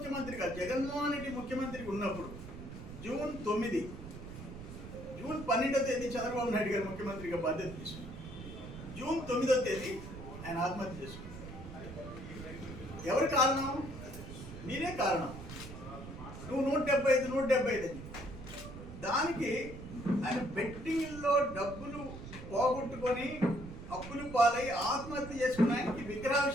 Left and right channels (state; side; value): noise; right; rumble, 12 dB below the sound